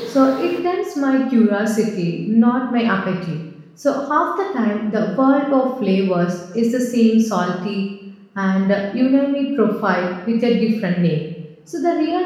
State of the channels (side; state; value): both; identical; correlation 1.00